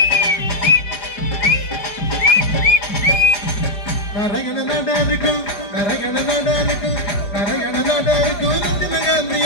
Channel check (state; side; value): late; right; 4.9 ms